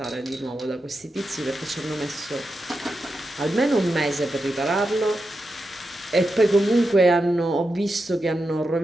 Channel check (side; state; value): both; normal; correlation 0.88